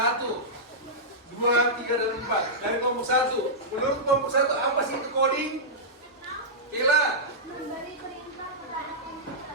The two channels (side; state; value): both; normal; correlation -0.12